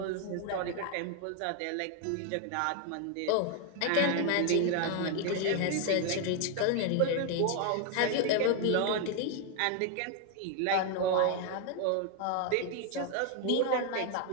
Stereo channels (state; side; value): different; both; correlation 0.01